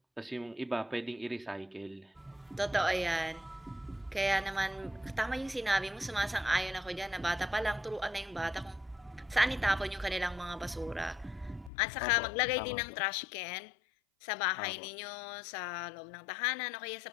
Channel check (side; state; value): right; drops out; at 11.7 s